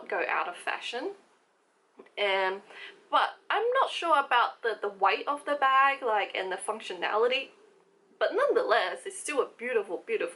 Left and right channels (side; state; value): both; identical; correlation 1.00